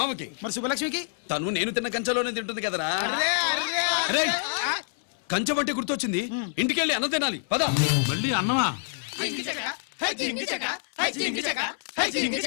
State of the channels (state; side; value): silent; right; 57 dB below the other